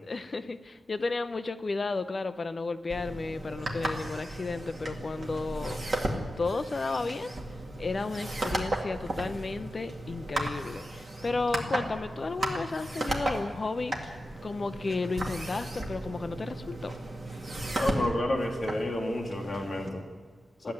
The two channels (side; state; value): both; normal; correlation 0.92